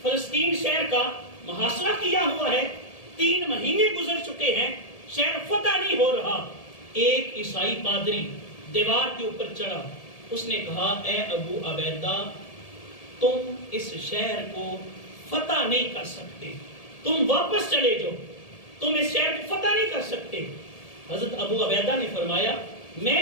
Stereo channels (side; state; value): right; late; 1.7 ms